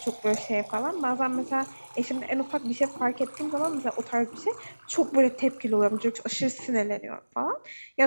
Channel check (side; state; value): both; inverted; correlation -1.00